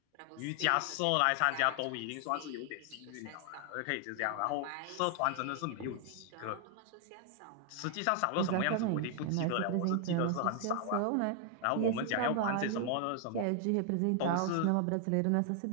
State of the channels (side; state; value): both; different; correlation 0.00